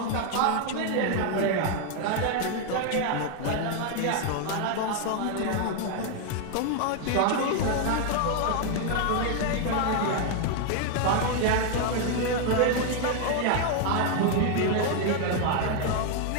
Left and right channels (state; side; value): different; both; correlation 0.00